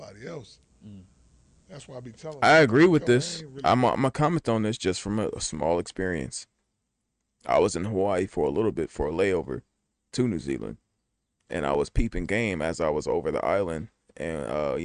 else. Mm. That's why I be telling I them, agree like, with yo, I this. ain't really. I'm gonna comment on this just from a small experience. I was in Hawaii for a little bit for a layover to New Zealand, and I was peeping game as I was over the island, and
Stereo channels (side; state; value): both; identical; correlation 1.00